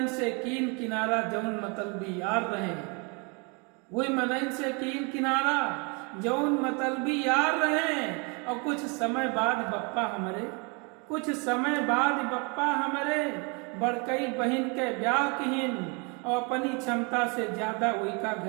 से कीन किनारा जौन मतलबी यार रहे। वही मनइन से कीन किनारा जौन मतलबी यार रहे। और कुछ समय बाद बप्पा हमरे, कुछ समय बाद बप्पा हमरे बड़कई बहन के ब्याह किहिन। और अपनी क्षमता से ज्यादा वही का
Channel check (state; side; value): quieter; left; 32.5 dB